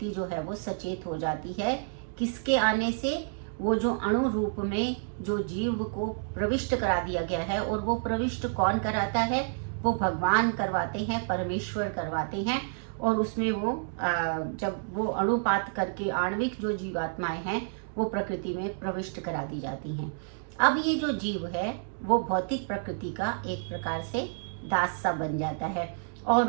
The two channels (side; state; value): left; silent; digital silence